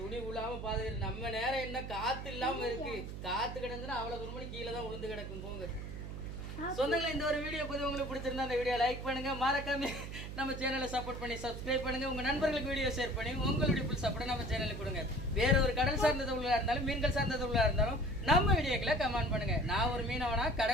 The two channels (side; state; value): right; noise; hum, 8 dB below the sound